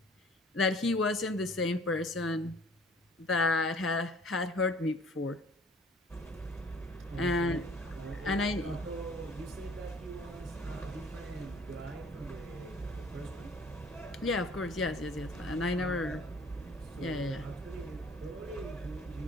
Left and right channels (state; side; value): normal; both; correlation 0.53